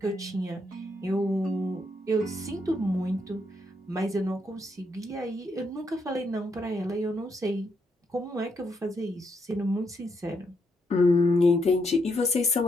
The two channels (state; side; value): normal; both; correlation 0.77